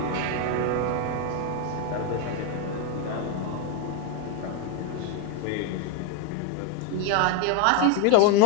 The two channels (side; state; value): both; different; correlation 0.01